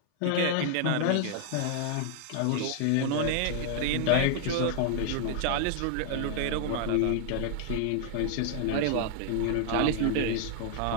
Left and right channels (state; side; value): different; both; correlation 0.00